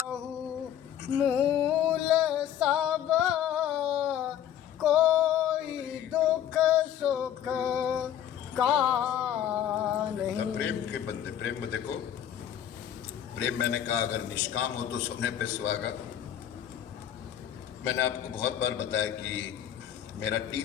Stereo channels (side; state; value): right; quieter; 10.4 dB